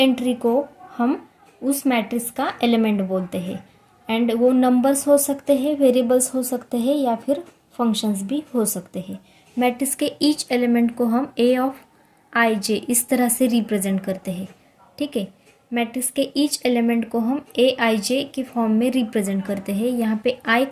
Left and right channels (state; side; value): identical; both; correlation 1.00